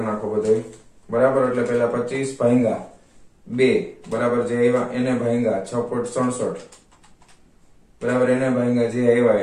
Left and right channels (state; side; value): identical; both; correlation 1.00